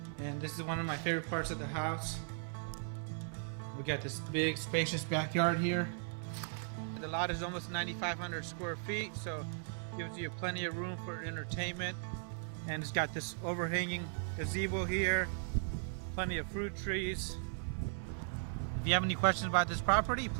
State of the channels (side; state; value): left; silent; 53 dB below the other